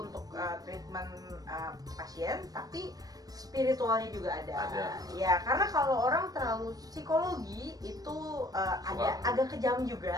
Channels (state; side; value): late; left; 0.18 ms